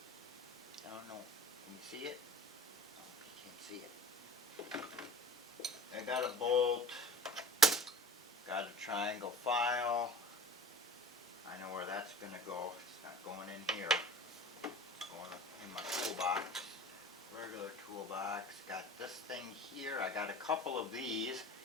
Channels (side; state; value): both; normal; correlation 0.39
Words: I don't know. Can you see it? Oh, you can't see it. I got a bolt, got a triangle file. I know where that's going to go. It's not going in here. It's going in my toolbox. Regular toolbox. Got this thing here. I got a couple of these.